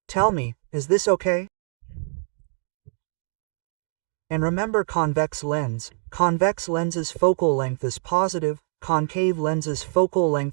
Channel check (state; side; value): silent; left; digital silence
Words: Tell me, is this okay? And remember convex lens. Convex lens's focal length is positive, concave lens's focal